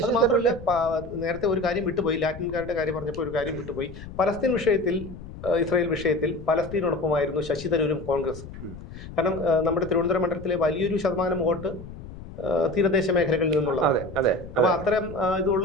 തരൂരിലെ നേരത്തെ ഒരു കാര്യം വിട്ടുപോയി, ലാറ്റിൻകാരുടെ കാര്യം പറഞ്ഞപ്പോൾ ഒരു കാര്യം വിട്ടുപോയി. പലസ്തീൻ വിഷയത്തിൽ, ഇസ്രായേൽ വിഷയത്തിൽ പലസ്തീനോടൊപ്പമായിരുന്നു ശശി തരൂരും കോൺഗ്രസും. കാരണം നമ്മുടെ തിരുവനന്തപുരം മണ്ഡലത്തിലെ വലിയൊരു ശതമാനം വോട്ട് തീരദേശ മേഖലകളിൽ നിന്നുള്ളതാണ്. അപ്പൊ അത്തരം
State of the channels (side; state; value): left; noise; rumble, 14 dB below the sound